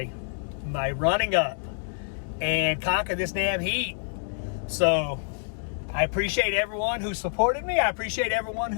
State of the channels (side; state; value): right; silent; digital silence